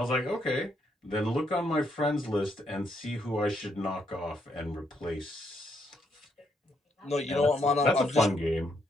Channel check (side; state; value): both; normal; correlation 0.75